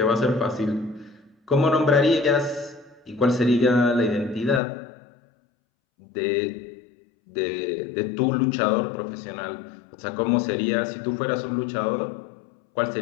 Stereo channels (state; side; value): drops out; right; at 4.6 s